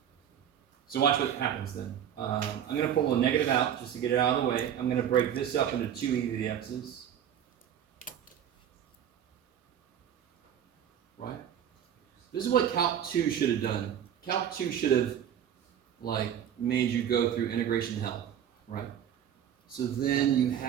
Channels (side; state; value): left; quieter; 9.5 dB